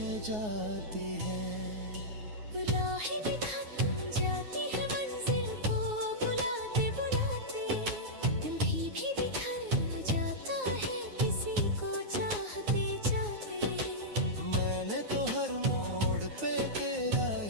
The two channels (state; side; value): late; left; 9.5 ms